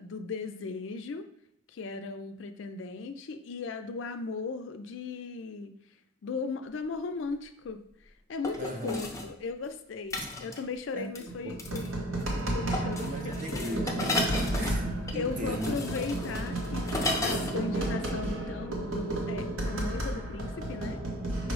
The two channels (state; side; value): normal; both; correlation 0.42